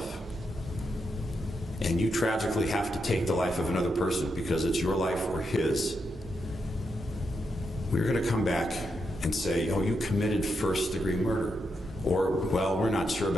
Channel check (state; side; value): normal; both; correlation 0.83